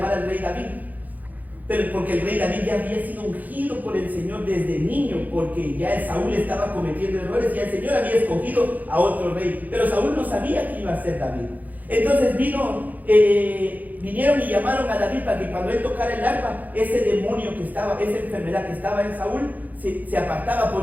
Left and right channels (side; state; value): left; late; 0.081 ms